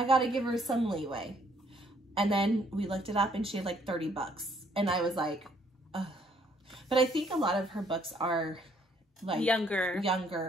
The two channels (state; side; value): normal; both; correlation 0.66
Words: got to give her some leeway. And then we looked it up and she had like $30. And I was like, ugh. But I think a lot of her books are like